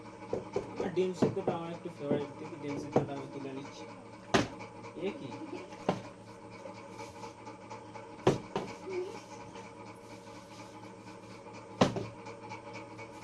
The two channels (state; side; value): identical; both; correlation 1.00